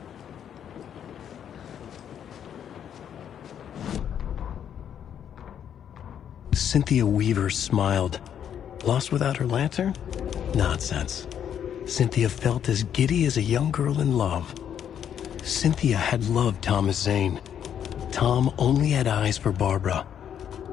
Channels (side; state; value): right; quieter; 9.1 dB